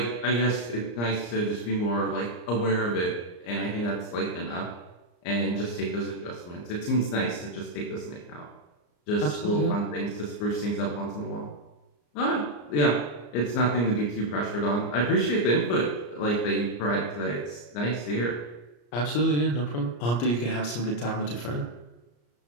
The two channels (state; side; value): late; right; 34 ms